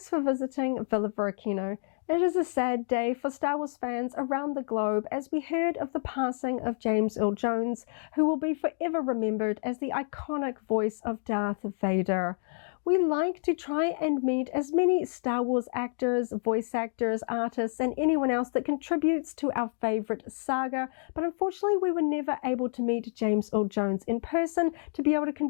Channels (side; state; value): right; silent; 59 dB below the other